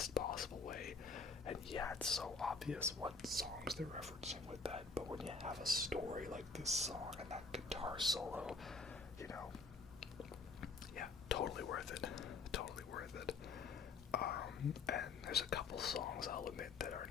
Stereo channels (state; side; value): quieter; right; 4.3 dB